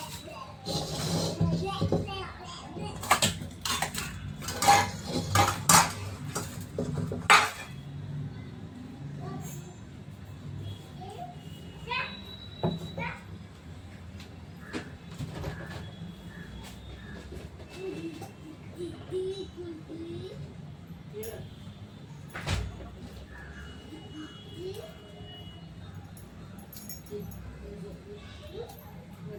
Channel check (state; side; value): identical; both; correlation 1.00